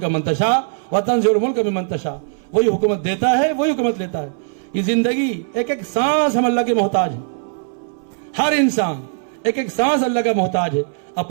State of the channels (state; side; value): silent; left; 61 dB below the other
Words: من تشاء وتنزع الملک ممن تشاء, وہی حکومت دیتا ہے, وہی حکومت لیتا ہے. یہ زندگی ایک ایک سانس ہم اللہ کے محتاج ہیں. ہر انسان ایک ایک سانس اللہ کا محتاج ہے.